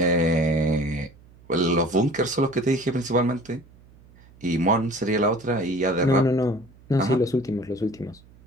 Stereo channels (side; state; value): right; noise; hum, 26 dB below the sound